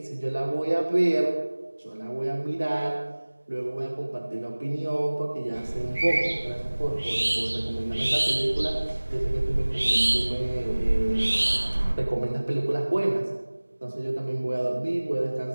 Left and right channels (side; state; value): both; inverted; correlation -1.00